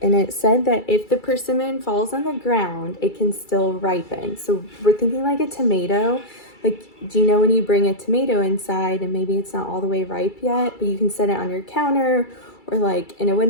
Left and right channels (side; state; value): right; late; 2.3 ms